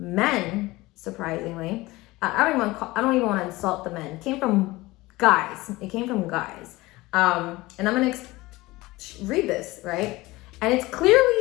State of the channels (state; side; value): quieter; right; 20.2 dB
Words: surprisingly. I don't even want to insult the men. It came from guys. It came from guys. And I'm gonna read this, right? And it's